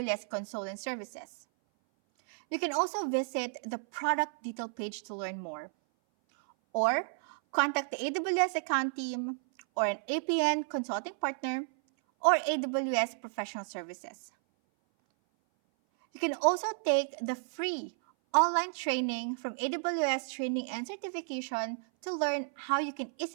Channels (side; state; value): left; silent; 56 dB below the other